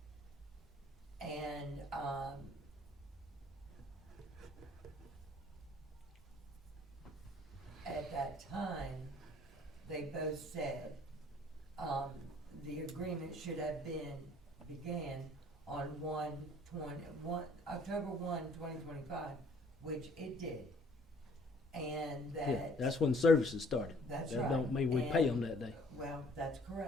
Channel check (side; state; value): both; normal; correlation 0.57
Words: And, at that time, they both said, the agreement should have began on October 1, 2025, which it did. And that. Yeah, that's when services started. That's That right. don't mean we pay And- them that day. Well, that's